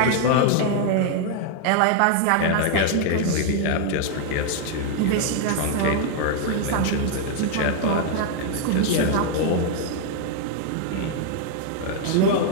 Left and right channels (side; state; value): both; different; correlation 0.00